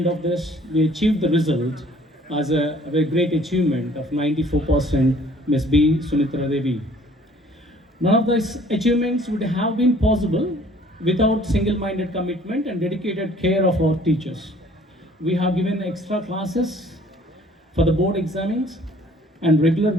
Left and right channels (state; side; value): normal; both; correlation 0.56